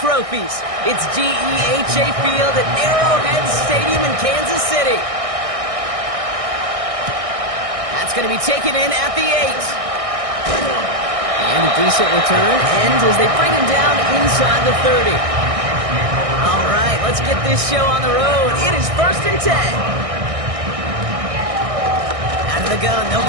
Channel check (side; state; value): left; late; 1.6 ms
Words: It's GEHA Field at Arrowhead Stadium in Kansas City. That's going to be taken in at the 8. And a decent return ends as they bring him down inside the 30. All right, let's get this show on the road. It is 1st and 10. Out of the gun, they'll